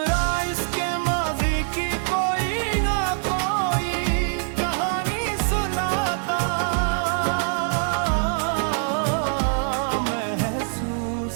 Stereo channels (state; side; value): silent; left; 63 dB below the other